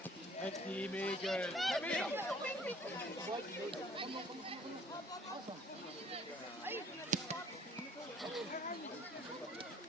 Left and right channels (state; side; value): normal; both; correlation 0.56